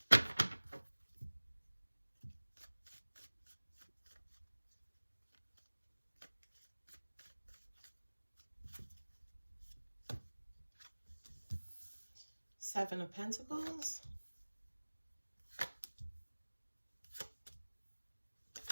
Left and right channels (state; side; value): inverted; both; correlation -1.00